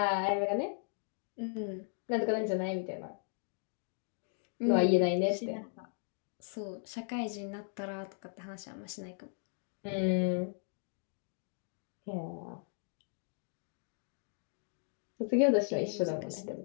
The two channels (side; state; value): right; silent; 53 dB below the other